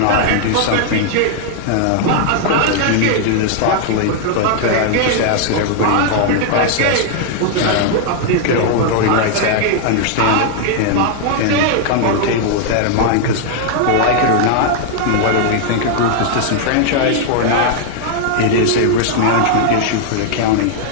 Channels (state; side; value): different; both; correlation 0.00